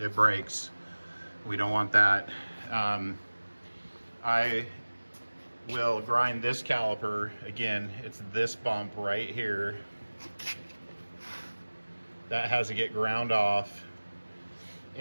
breaks. We don't want that. I will grind this caliper. Again, it's this bump right here. That has to get ground off.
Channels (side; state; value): both; inverted; correlation -1.00